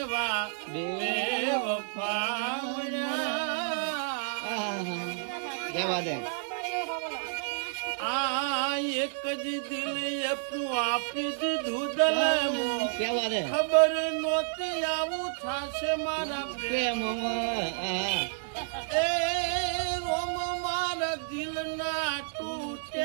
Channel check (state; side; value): silent; left; digital silence